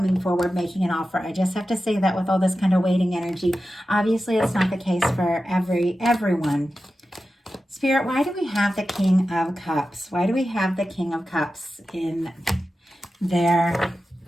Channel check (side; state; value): both; normal; correlation 0.93